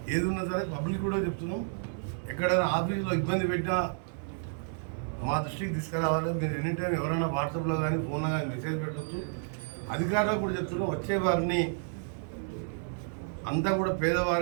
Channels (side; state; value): left; silent; digital silence